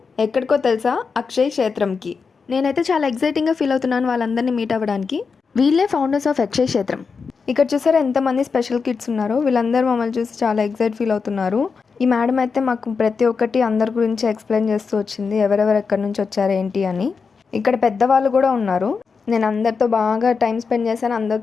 ఎక్కడికో తెలుసా? అక్షయ్ క్షేత్రంకి. నేనైతే చాలా ఎక్సైటింగ్గా ఫీల్ అవుతున్నాను వాళ్ళందరినీ మీట్ అవ్వడానికి. వీళ్ళే ఫౌండర్స్ ఆఫ్ అక్షయ్ క్షేత్రం. ఇక్కడ చూసారా ఎంతమంది స్పెషల్ కిడ్స్ ఉన్నారో. వీళ్ళందరూ మమ్మల్ని చూసి చాలా ఎక్సైట్ ఫీల్ అవుతున్నారు. ఈ మేడం అయితే మాకు ప్రతి ఒక్కటి అందరి గురించి ఎక్స్ప్లెయిన్ చేస్తూ వచ్చింది, ఎవరెవరు ఎక్కడి నుంచి వచ్చారు ఏంటి అని. ఇక్కడ పెద్దవాళ్ళు కూడా ఉన్నారు. నేను అందరితో బాగా టైం స్పెండ్ చేశాను,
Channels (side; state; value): right; quieter; 5.2 dB